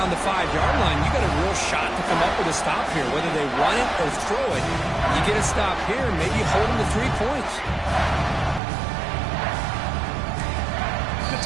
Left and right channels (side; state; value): left; drops out; at 8.6 s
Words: the 5-yard line. You got a real shot to come up with a stop here, whether they run it or throw it. You get a stop here, maybe hold them to 3 points. The